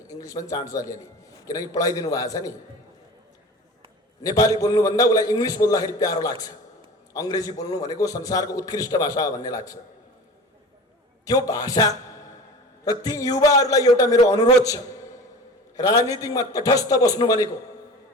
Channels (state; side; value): normal; both; correlation 0.37